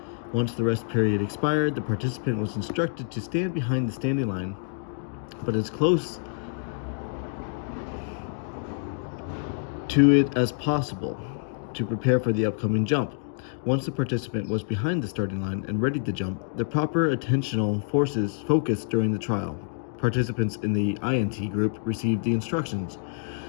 Once the rest period expired, the participant was instructed to stand behind the standing line, but as close to it as possible to prepare for the upcoming jump. Once the participant was behind the starting line and ready to jump, the proper attentional focus during the trial. Participants in the INT group received the instructions.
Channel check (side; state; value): right; silent; digital silence